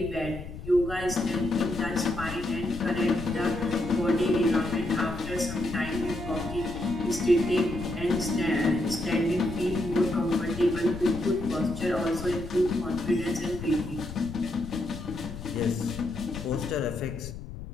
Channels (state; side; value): noise; left; rumble, 11 dB below the sound